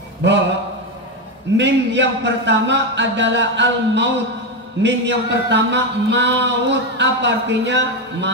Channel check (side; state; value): both; normal; correlation 0.11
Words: Mim yang pertama adalah al-maut. Mim yang pertama maut. Apa artinya?